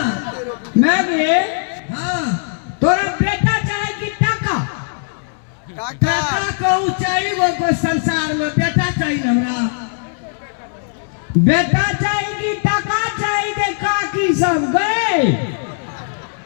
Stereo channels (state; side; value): silent; right; digital silence